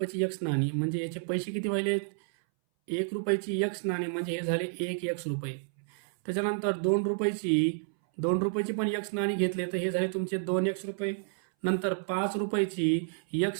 एक्स नाणी म्हणजे याचे पैसे किती व्हायले? 1 रुपयाची एक्स नाणी म्हणजे हे झाले 1 एक्स रुपये. त्याच्यानंतर 2 रुपयाची पण एक्स नाणी घेतले तर हे झाले तुमचे 2 एक्स रुपये. नंतर 5 रुपयाची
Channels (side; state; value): left; silent; 58 dB below the other